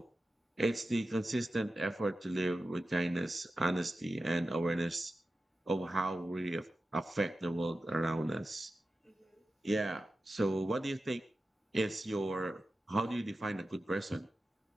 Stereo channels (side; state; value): both; normal; correlation 0.93